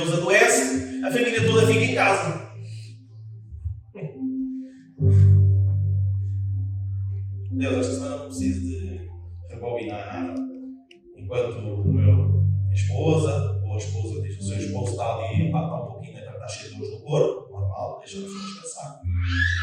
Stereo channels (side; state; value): both; identical; correlation 1.00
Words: adoece, a família toda fica em casa. Deus, esta semana não preciso de rebobinar nada. Enquanto minha esposa, ou a esposa diz que o seu esposo está ali, está um pouquinho, está cheio de dores no corpo, normal, deixa a pessoa descansar.